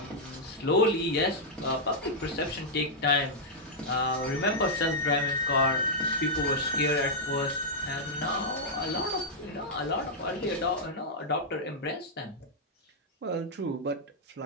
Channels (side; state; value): both; normal; correlation -0.06